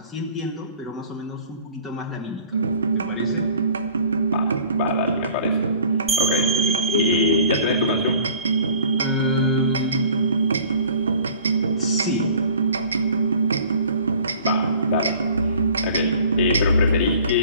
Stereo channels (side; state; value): both; inverted; correlation -0.49